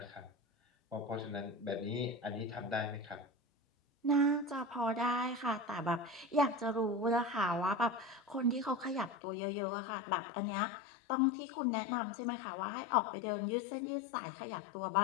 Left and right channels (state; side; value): drops out; right; at 9.2 s